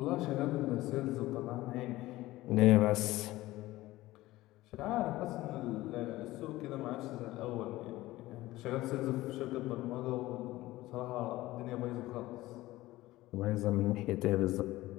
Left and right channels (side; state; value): right; quieter; 17.5 dB